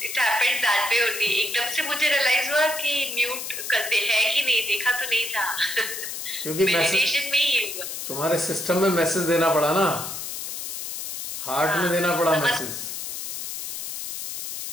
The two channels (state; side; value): noise; left; hiss, 6 dB below the sound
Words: It happened that way only। एकदम से मुझे रियलाइज हुआ कि म्यूट करते है कि नहीं, देखा तो नहीं था। क्योंकि मेडिटेशन में ही हुआ। तुम्हारे सिस्टम में मैसेज देना पड़ा ना, हार्ट में देना पड़ा मैसेज।